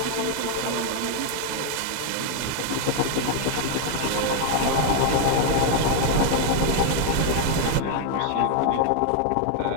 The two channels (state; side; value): different; both; correlation 0.00